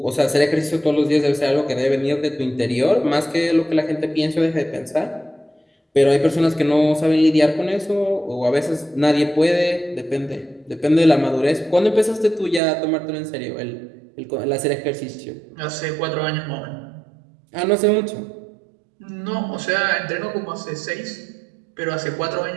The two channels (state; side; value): drops out; left; at 12.6 s